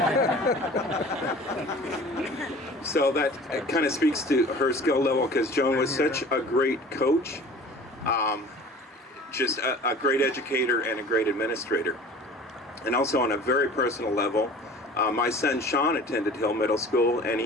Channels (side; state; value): both; normal; correlation 0.44